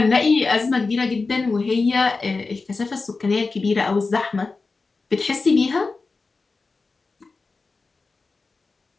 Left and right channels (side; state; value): right; quieter; 4.0 dB